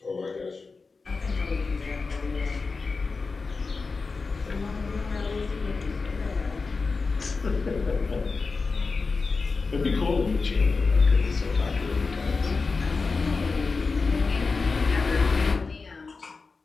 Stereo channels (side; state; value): right; quieter; 4.3 dB